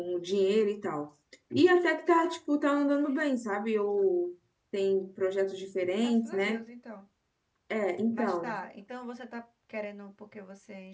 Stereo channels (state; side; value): identical; both; correlation 1.00